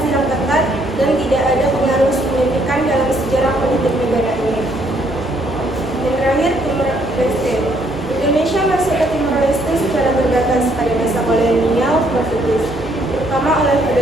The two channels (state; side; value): normal; both; correlation 0.68